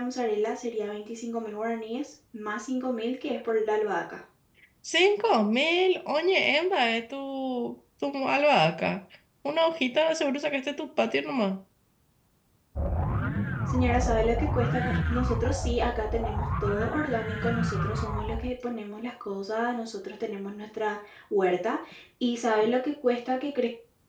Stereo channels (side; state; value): both; identical; correlation 1.00